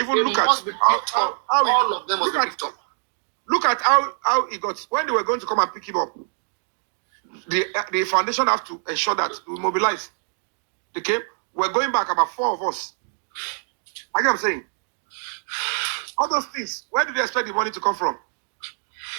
look at all of them must be picked up. Look at how he got when they were going to come and pick him up. The foundation have to ensure that we mobilize. They came. We're going back about 4 of us. I get what I'm saying. All those things. Where do they expect the money to come from?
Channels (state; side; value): silent; left; digital silence